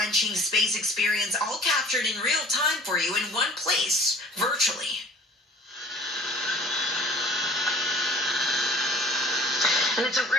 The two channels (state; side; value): normal; both; correlation 0.50